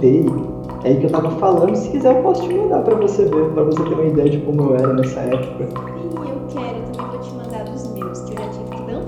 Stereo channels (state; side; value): identical; both; correlation 1.00